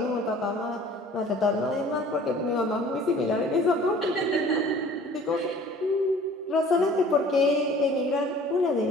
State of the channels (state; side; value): normal; both; correlation 0.49